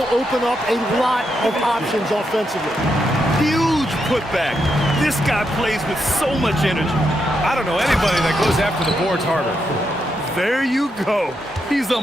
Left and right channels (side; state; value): both; normal; correlation 0.82